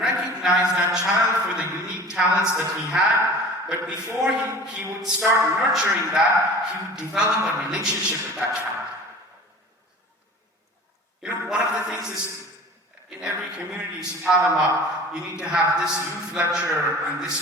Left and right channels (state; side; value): normal; both; correlation 0.41